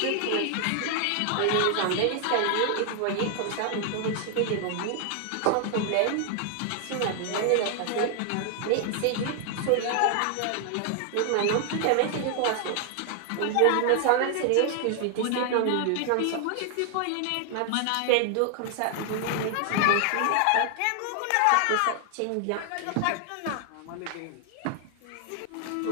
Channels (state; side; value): different; both; correlation 0.00